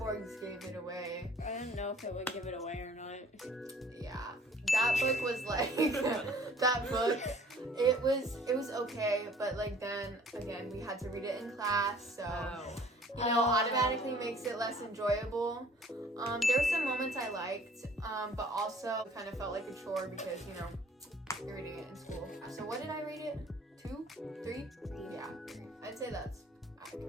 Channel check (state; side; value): normal; both; correlation 0.53